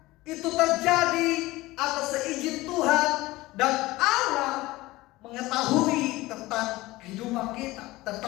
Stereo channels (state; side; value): quieter; right; 19.2 dB